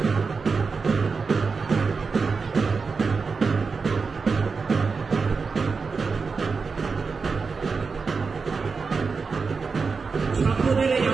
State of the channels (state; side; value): quieter; left; 4.8 dB